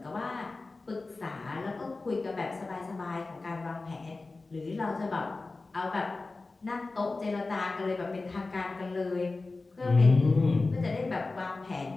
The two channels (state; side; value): quieter; right; 3.5 dB